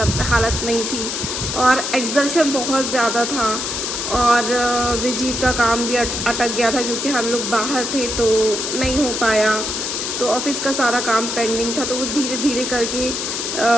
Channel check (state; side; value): noise; left; hiss, 3 dB below the sound